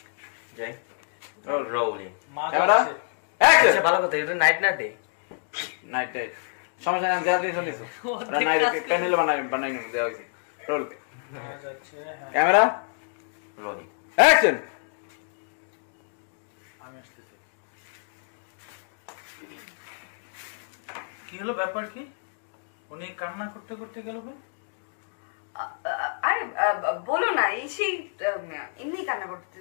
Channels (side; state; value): right; silent; digital silence